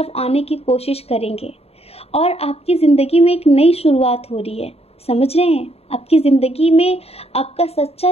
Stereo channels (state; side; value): late; right; 0.29 ms